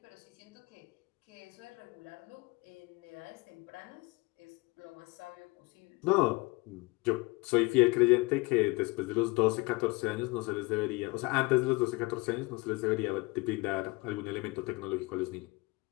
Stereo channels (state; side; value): quieter; right; 25.0 dB